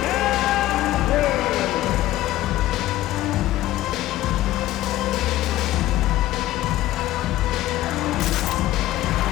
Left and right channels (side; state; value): right; quieter; 15.3 dB